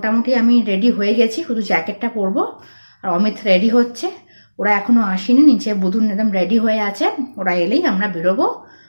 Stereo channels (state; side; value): inverted; both; correlation -1.00